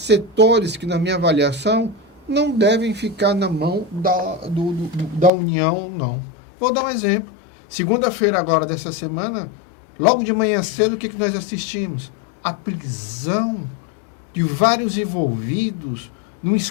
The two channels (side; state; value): right; drops out; at 5.3 s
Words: que, na minha avaliação, não devem ficar na mão da União, não. Vou dar um exemplo. Segunda-feira agora dessa semana, logo de manhã cedo, o que nós assistimos? A prisão de vários envolvidos num